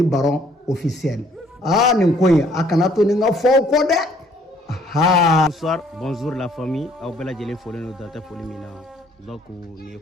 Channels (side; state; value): both; normal; correlation 0.62